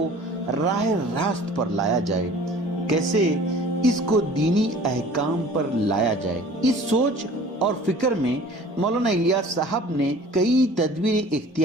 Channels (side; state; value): both; normal; correlation 0.47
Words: راہ راست پر لایا جائے، کیسے اس کو دینی احکام پر لایا جائے۔ اس سوچ اور فکر میں مولانا الیاس صاحب نے کئی تدبیریں